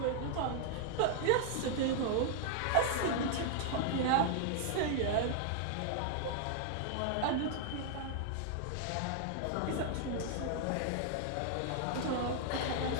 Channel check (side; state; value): both; different; correlation 0.00